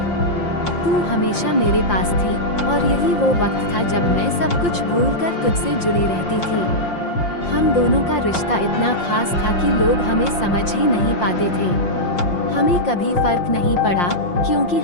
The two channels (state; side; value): late; right; 5.7 ms